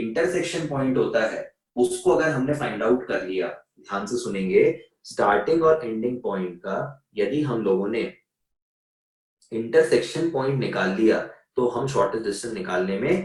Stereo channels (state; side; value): identical; both; correlation 1.00